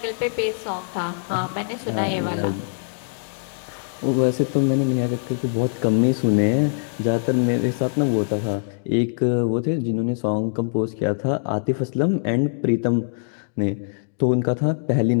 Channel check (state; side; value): silent; right; digital silence